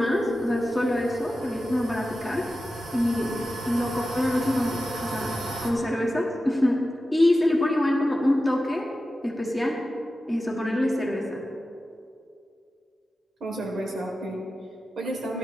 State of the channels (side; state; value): both; normal; correlation 0.93